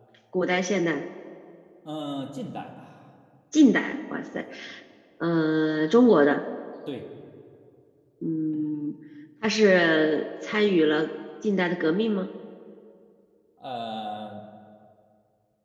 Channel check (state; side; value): identical; both; correlation 1.00